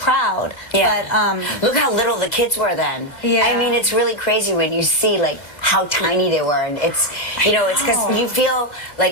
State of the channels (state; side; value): late; right; 2.1 ms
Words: Yeah. But Look how little the kids were then. Yeah. I mean, it's really crazy when you see like how tiny they were, and it's it's because you feel